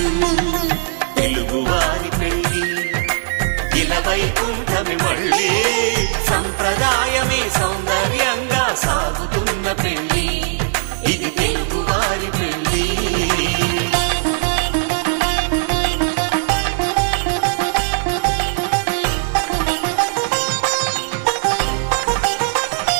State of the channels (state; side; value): silent; left; 65 dB below the other